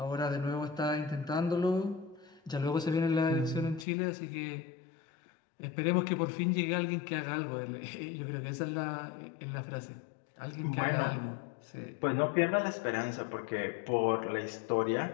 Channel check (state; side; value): drops out; right; at 3.9 s